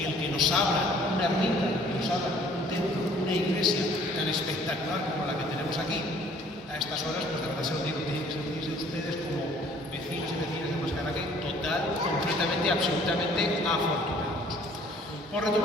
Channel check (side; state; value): both; normal; correlation 0.57